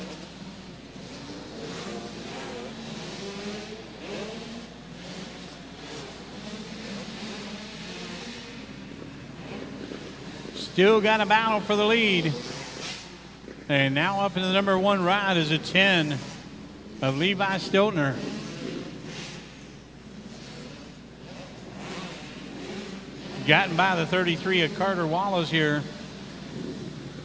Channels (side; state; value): both; identical; correlation 1.00